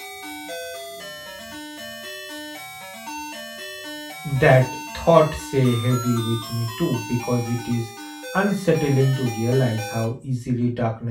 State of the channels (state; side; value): identical; both; correlation 1.00